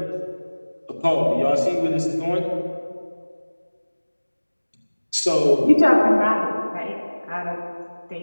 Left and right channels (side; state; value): both; inverted; correlation -1.00